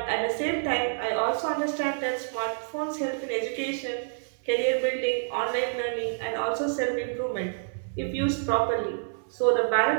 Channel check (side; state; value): left; silent; 59 dB below the other